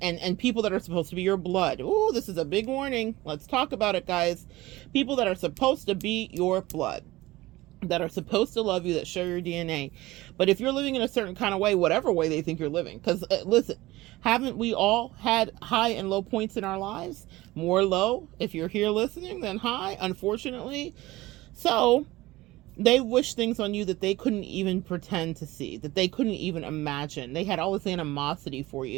people that are supposed to be your blood. Oh, this is a big warning. Let's talk about it, guys. People that are supposed to be your blood, that are supposed to love you, that share your DNA. But if you're living in a certain kind of way, whatever way they think you're living, because listen, haven't we all had high and low points in our lives? More low if you're here listening than high, unfortunately. So they wish things on you that they couldn't even pretend to see, that they couldn't even imagine. They had all this animosity for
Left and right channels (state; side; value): quieter; left; 18.8 dB